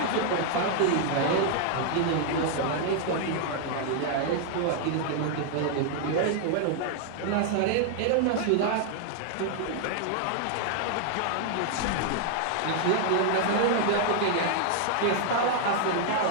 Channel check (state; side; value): different; both; correlation 0.00